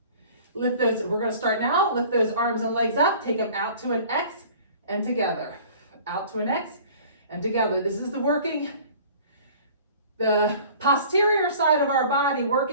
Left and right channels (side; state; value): both; inverted; correlation -0.47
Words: Lift those, we're going to start now. Lift those arms and legs up. Take them out to an X and together. Out to an X and together. This is the posterior side of our body,